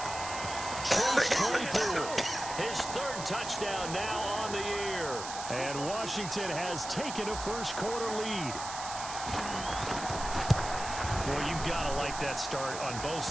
Chase Claypool, his 3rd touchdown now on the year. And Washington has taken a first-quarter lead. Well, you've got to like that start on both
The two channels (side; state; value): right; noise; hiss, 8 dB below the sound